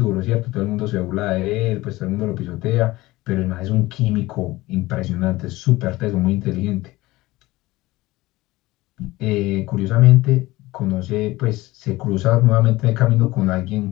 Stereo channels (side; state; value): right; quieter; 19.1 dB